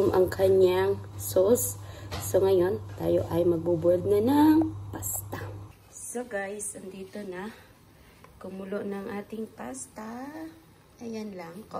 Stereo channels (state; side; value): identical; both; correlation 1.00